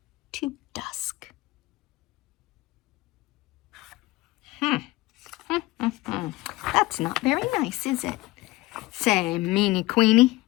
to dusk. That's not very nice, is it? Say, meanie queenie.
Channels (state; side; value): quieter; right; 19.6 dB